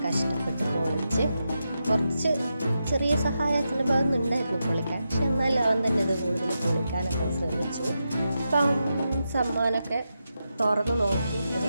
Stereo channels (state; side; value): inverted; both; correlation -0.87